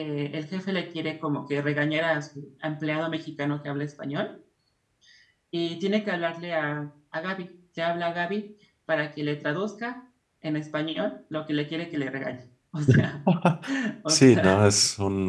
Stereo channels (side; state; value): both; identical; correlation 1.00